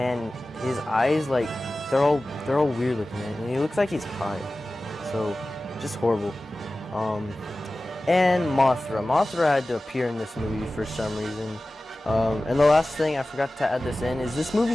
his eyes, like, they're all weird looking, and he looks like he's high. So just horrible. And Mothra had to appear in this movie for some reason. And the last thing, I forgot to add this in, is this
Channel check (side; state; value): both; normal; correlation 0.96